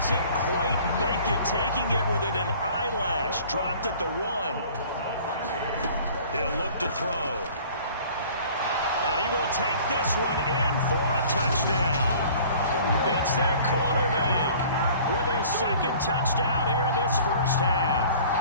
quite make it, taking it within an eyelash. Dropped at the 1. He'll look to throw. And he will take this one in for a touchdown. It's their quarterback with his 2nd touchdown here in this 1st half.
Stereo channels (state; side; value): inverted; both; correlation -0.49